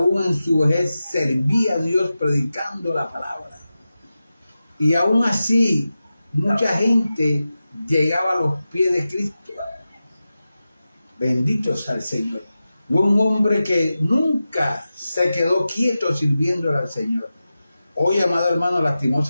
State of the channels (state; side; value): inverted; both; correlation -0.93